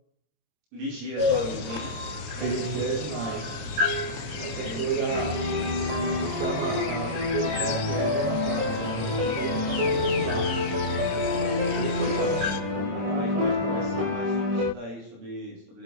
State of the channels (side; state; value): left; late; 26 ms